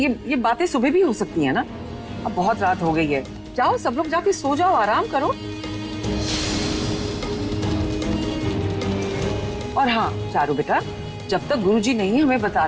बातें सुबह भी हो सकती है ना? अब बहुत रात हो गई है, जाओ सब लोग जाके सो जाओ, आराम करो। और हाँ चारू बेटा, जब तक गुरुजी नहीं हमें बता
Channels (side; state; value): both; identical; correlation 1.00